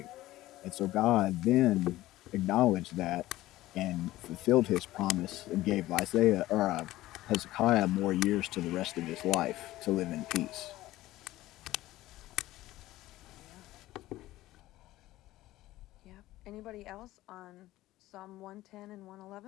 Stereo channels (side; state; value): right; quieter; 16.3 dB